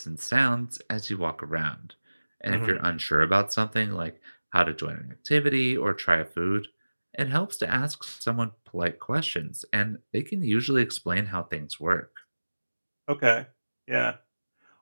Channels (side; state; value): both; inverted; correlation -1.00